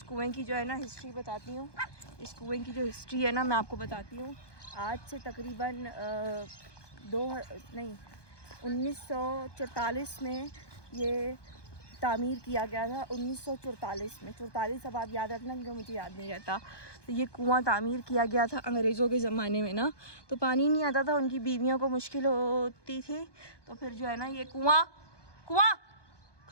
कुएं की जो है ना हिस्ट्री बताती हूँ। इस कुएं की जो हिस्ट्री है ना मैं आपको बताती हूँ। आज से तकरीबन 1944 में ये तामीर किया गया था। 1944 में, 44 अब आप याद रखना क्योंकि मुझे याद नहीं रहता। तो ये कुआं तामीर किया गया था अंग्रेज़ों के ज़माने में ना, तो पानी नहीं आता था, उनकी बीवियों को मुश्किल होती थी। तो फिर जो है ना ये कुआं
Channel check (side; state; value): right; late; 1.2 ms